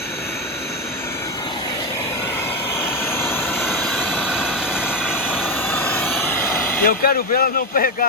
Eu quero ver ela não pegar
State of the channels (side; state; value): both; normal; correlation 0.10